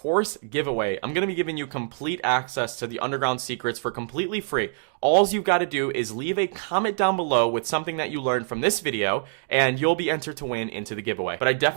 giveaway. I'm going to be giving you complete access to the underground secrets for completely free. All you've got to do is leave a comment down below with something that you learned from this video, and you'll be entered to win into the giveaway. But I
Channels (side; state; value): left; silent; digital silence